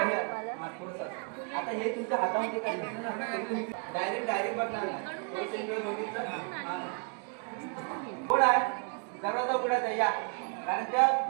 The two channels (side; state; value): left; quieter; 38.6 dB